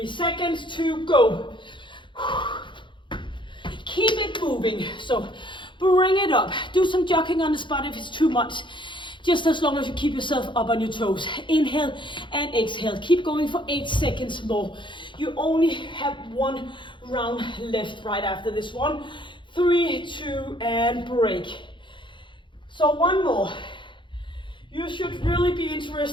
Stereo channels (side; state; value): right; late; 0.23 ms